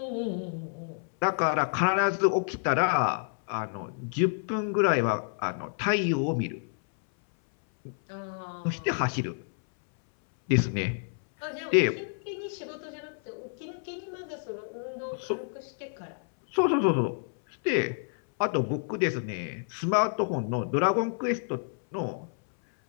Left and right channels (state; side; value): silent; right; 59 dB below the other